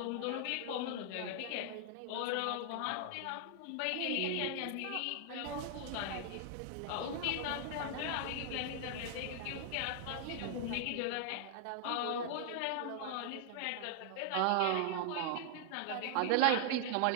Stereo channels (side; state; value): both; different; correlation 0.00